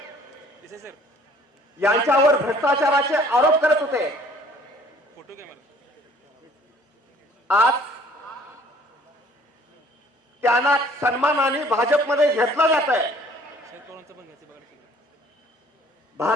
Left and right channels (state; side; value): normal; both; correlation 0.55